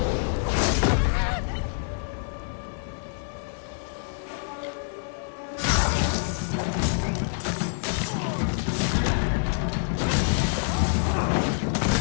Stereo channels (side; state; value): right; silent; 61 dB below the other